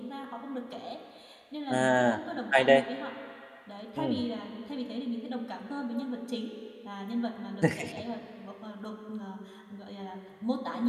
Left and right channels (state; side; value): identical; both; correlation 1.00